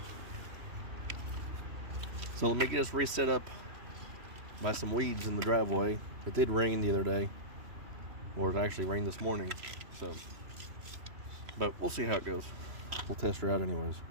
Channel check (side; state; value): left; late; 3.1 ms